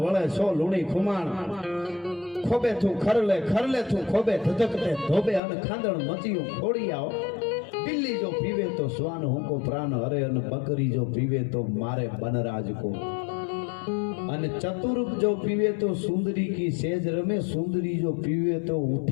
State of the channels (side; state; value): right; drops out; at 5.4 s